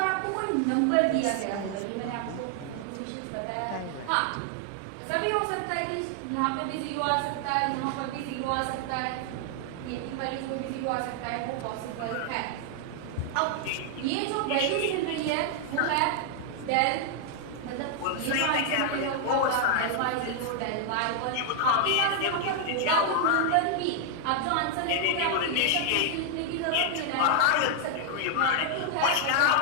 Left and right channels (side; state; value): both; different; correlation 0.00